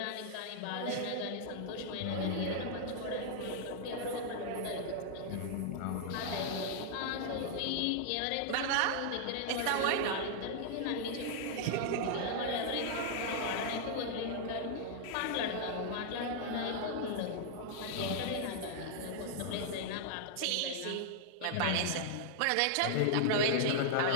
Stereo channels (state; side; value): different; both; correlation -0.01